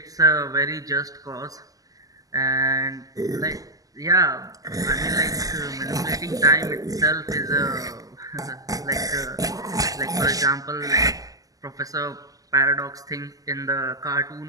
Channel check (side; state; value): left; late; 0.17 ms